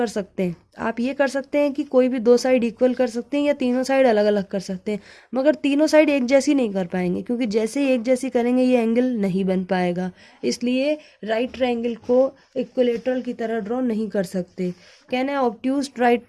सकते हैं, आप ये कर सकते हैं कि कोई भी दो साइड इक्वल कर सकते हैं या तीनों साइड अलग अलग कर सकते हैं, मगर तीनों साइड एक जैसी नहीं कर पाएंगे, क्योंकि जैसे ही एक जैसी करेंगे ये एंगल नहीं बन पाएगा। इसलिए राइट ट्राइंगल को इक्विलेटरल की तरह ड्रॉ नहीं कर सकते। कैन है obtuse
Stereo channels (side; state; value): both; identical; correlation 1.00